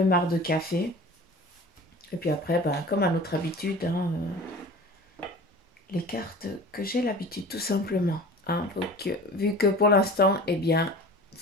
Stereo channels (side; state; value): both; normal; correlation 0.39